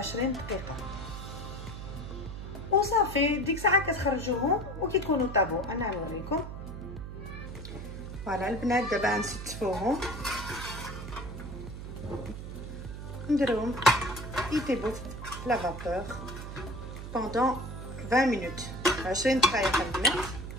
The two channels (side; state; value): right; noise; hum, 9 dB below the sound